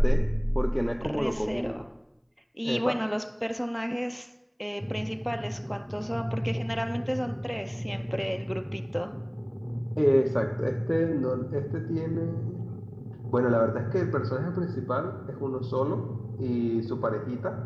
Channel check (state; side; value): identical; both; correlation 1.00